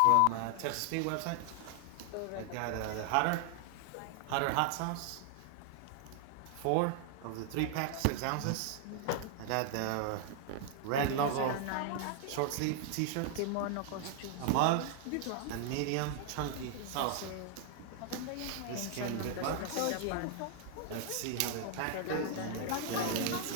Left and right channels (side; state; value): both; different; correlation 0.00